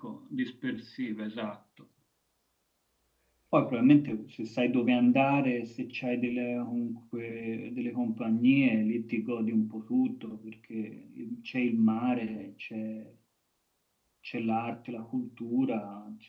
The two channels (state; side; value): identical; both; correlation 1.00